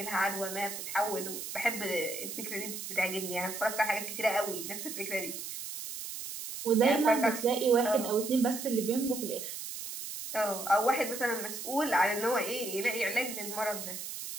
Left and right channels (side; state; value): right; noise; hiss, 7 dB below the sound